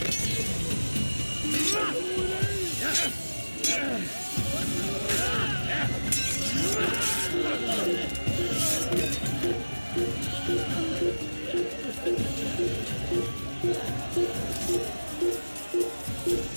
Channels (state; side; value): inverted; both; correlation -1.00